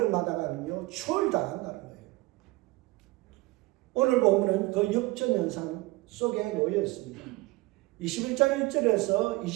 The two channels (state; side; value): quieter; left; 21.6 dB